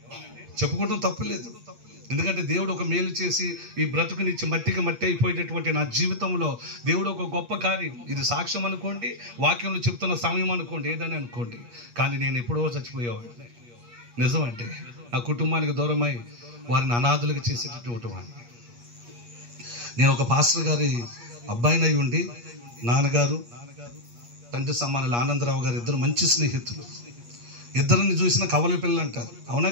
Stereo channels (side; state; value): left; late; 8.5 ms